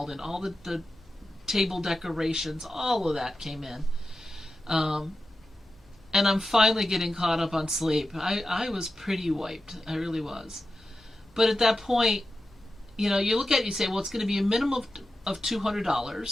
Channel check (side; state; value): both; normal; correlation 0.91